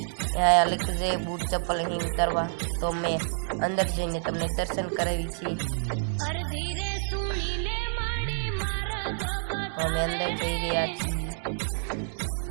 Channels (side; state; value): left; silent; digital silence